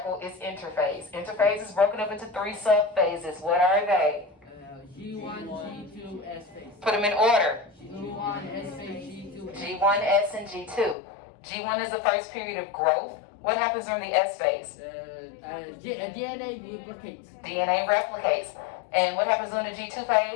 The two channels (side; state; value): right; drops out; at 11.0 s